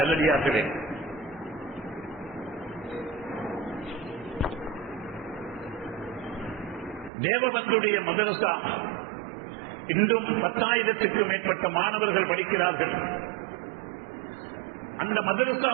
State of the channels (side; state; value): left; drops out; at 7.1 s